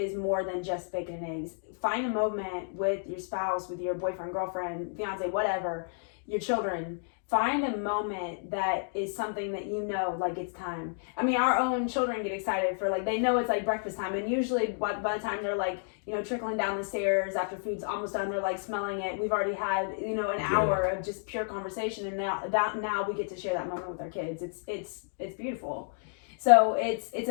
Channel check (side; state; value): right; silent; digital silence